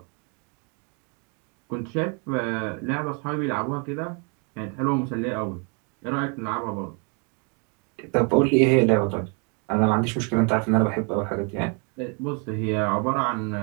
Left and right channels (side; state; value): left; quieter; 36.0 dB